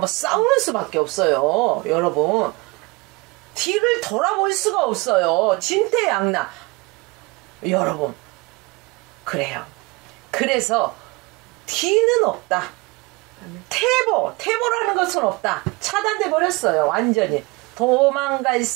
싸우는 수밖에 없어요. 여러분, 뒤를 돌아볼 수가 없어요. 진퇴양난. 여러분, 그래요. 그래서 뒤는 없다. 태보라는 것은 없다. 차단돼 버렸어요. 완전히 도망갈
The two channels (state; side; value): quieter; left; 25.8 dB